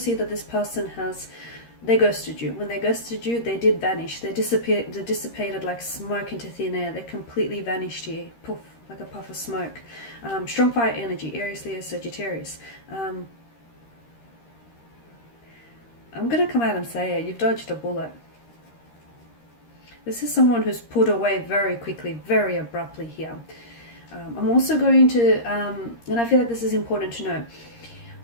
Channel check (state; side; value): late; right; 13 ms